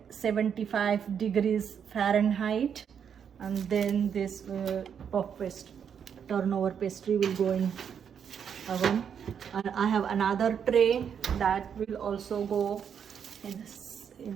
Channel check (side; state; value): left; quieter; 7.7 dB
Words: degrees Fahrenheit, and then this puff pastry turnover pastry will go in oven. And I have another tray that will also go in